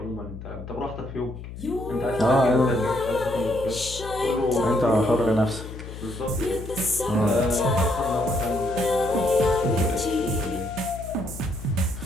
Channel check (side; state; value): left; noise; hum, 11 dB below the sound